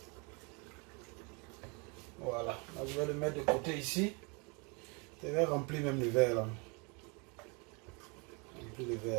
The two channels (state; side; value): quieter; left; 31.6 dB